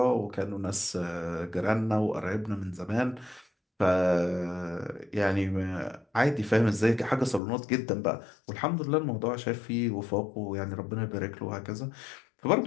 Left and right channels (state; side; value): drops out; right; at 7.4 s